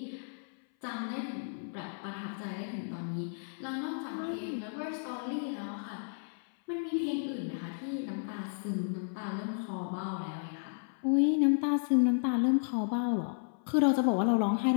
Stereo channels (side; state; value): right; silent; 56 dB below the other